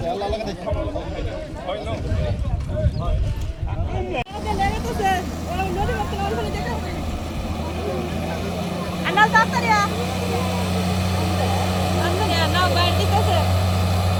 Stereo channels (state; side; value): identical; both; correlation 1.00